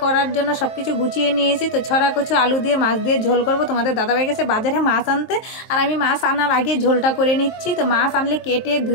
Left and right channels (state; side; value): late; right; 23 ms